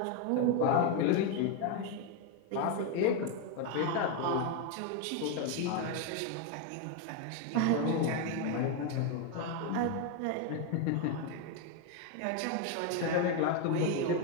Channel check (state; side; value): different; both; correlation 0.01